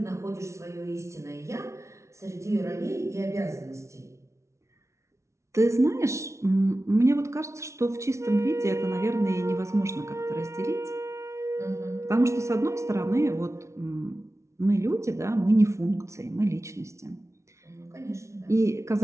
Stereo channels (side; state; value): left; late; 0.14 ms